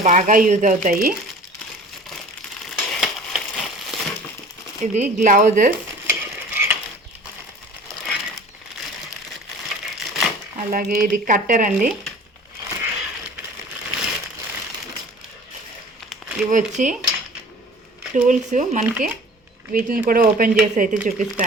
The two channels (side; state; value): both; normal; correlation 0.45